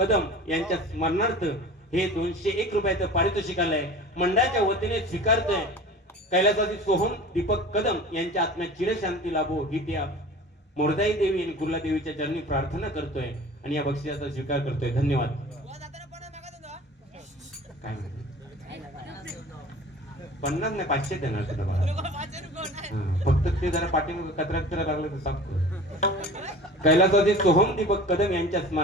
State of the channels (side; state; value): both; normal; correlation 0.40